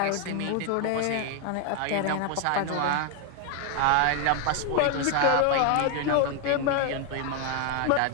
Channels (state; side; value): different; both; correlation 0.01